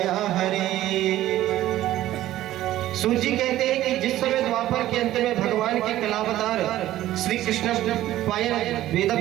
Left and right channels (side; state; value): left; quieter; 14.2 dB